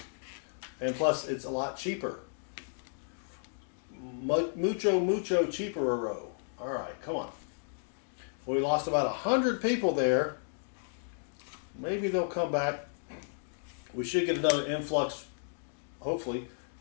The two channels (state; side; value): silent; right; digital silence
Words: and plus it's a lot cheaper. Mucho cheaper. All right, come on. Well, we lost about 100 people there. Maybe they'll come back. We should get another influx, hopefully,